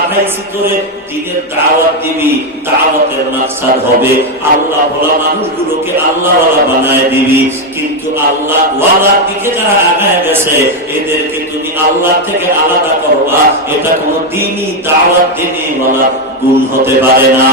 করে দিনের দাওয়াত দিবি, দাওয়াতের মাকসাদ হবে আল্লাহ ওয়ালা মানুষগুলোকে আল্লাহ ওয়ালা বানায় দিবি। কিন্তু আল্লাহ ওয়ালার দিকে যারা আগায় গেছে এদেরকে তুমি আল্লাহ থেকে আলাদা করবা, এটা কোন দিনই দাওয়াত দিনে ওয়ালা গুণ হতে পারে না।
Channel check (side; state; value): both; normal; correlation 0.05